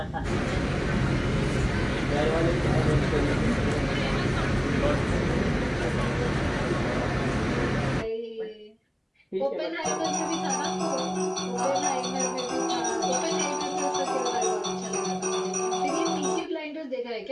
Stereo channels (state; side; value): identical; both; correlation 1.00